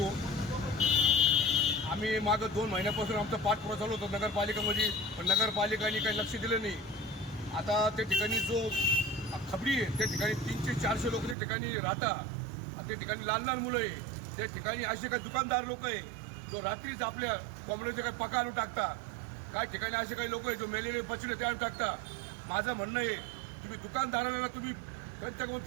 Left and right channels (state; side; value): drops out; left; at 11.4 s